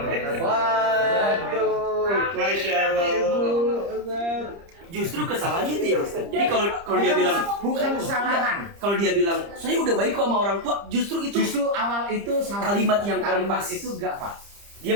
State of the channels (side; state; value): left; late; 30 ms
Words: Waduh, Masya Allah. Justru kesalahannya itu ya Ustaz. Jadi kalau dia bilang bukan kesalahan. Kalau dia bilang saya udah baik kok sama orang tua, justru awal itu salah. Kalimat yang pas itu enggak Pak. Dia